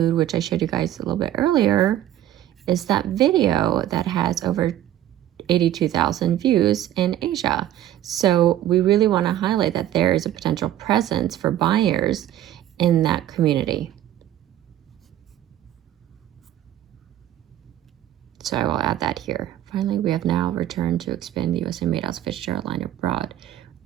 which I showed you guys a little bit earlier, is that video that has over 82,000 views in Asia. So we really want to highlight that there is a potential presence for buyers in that community. So I will add that here. Finally, we have now returned to expand the USA Made Elsa Fitzgerald line abroad.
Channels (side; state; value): left; quieter; 12.4 dB